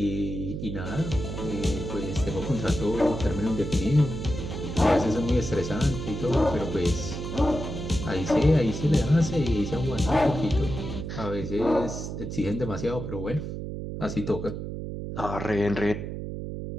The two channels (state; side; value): noise; right; hum, 6 dB below the sound